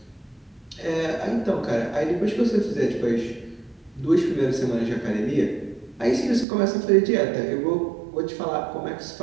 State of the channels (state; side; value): drops out; left; at 6.5 s